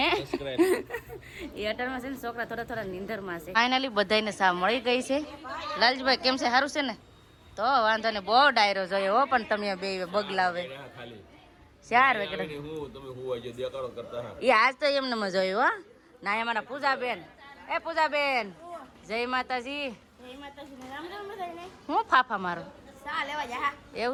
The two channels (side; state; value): both; identical; correlation 1.00